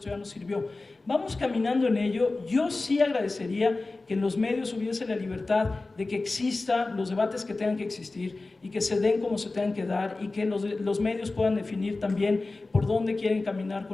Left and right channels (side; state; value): right; quieter; 3.4 dB